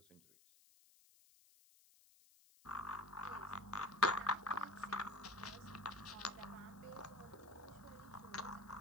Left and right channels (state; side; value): noise; left; hiss, 25 dB below the sound